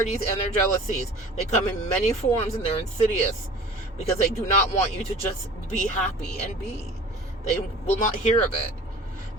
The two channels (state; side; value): normal; both; correlation 0.43